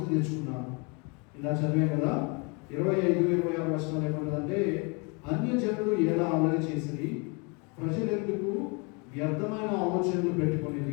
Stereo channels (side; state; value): right; quieter; 31.8 dB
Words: తెచ్చుకున్నారు. ఇలా చదివాం కదా. 25-26 వచనాలు ఏమంటుందంటే, అన్యజనులు ఎలా అల్లరి చేసిరి, ప్రజలెందుకు వ్యర్థమైన ఆలోచనలు